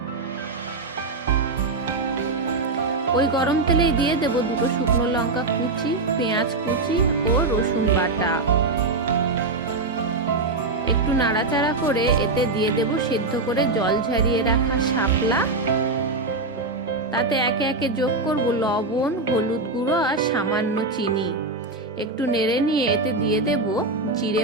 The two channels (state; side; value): quieter; left; 3.4 dB